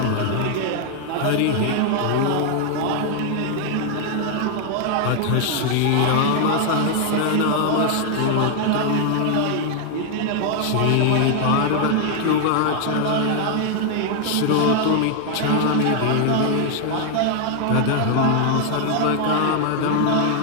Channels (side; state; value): both; different; correlation 0.00